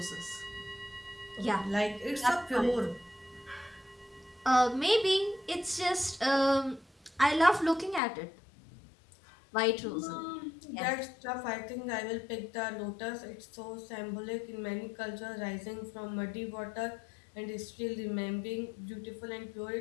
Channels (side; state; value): right; drops out; at 8.0 s